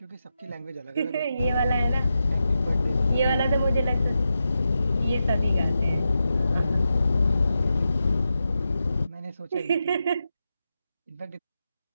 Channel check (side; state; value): both; inverted; correlation -0.89